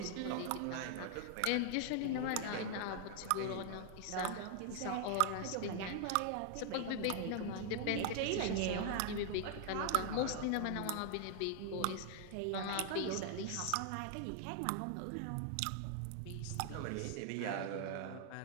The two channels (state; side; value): different; both; correlation 0.00